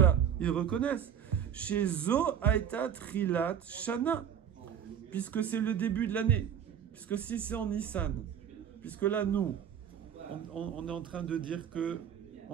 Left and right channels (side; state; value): left; quieter; 8.8 dB